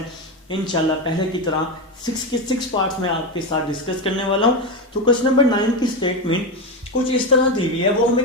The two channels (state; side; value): normal; both; correlation 0.13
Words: इंशाल्लाह पहले की तरह 6 के 6 पार्ट्स में आपके साथ डिस्कस करने वाला हूँ। तो क्वेश्चन नंबर 9 की स्टेटमेंट कुछ इस तरह दी हुई है। वो